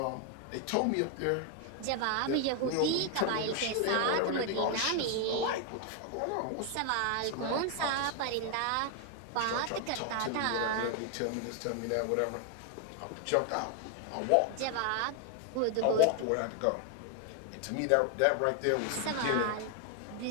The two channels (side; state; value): both; different; correlation 0.01